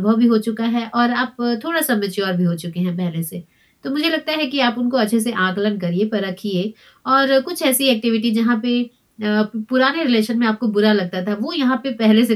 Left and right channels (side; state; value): both; identical; correlation 1.00